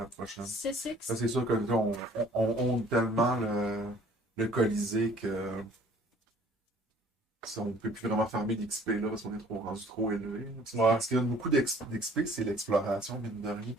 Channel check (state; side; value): normal; both; correlation 0.55